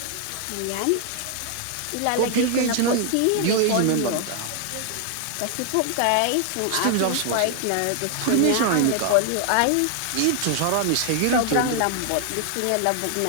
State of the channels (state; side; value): different; both; correlation 0.00